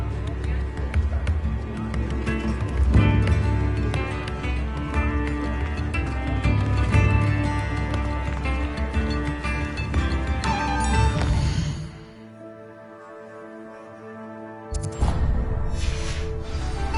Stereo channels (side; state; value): both; identical; correlation 1.00